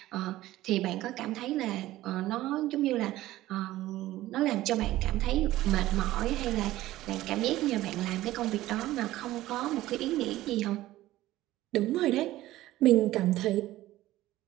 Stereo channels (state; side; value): quieter; left; 15.8 dB